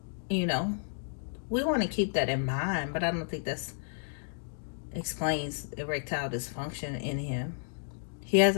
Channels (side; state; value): right; silent; digital silence